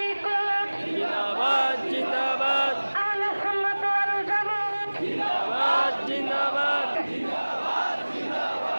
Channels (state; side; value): inverted; both; correlation -1.00